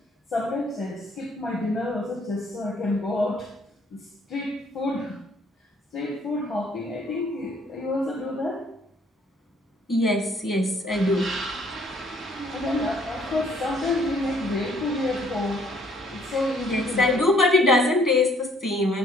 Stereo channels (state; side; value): normal; both; correlation 0.62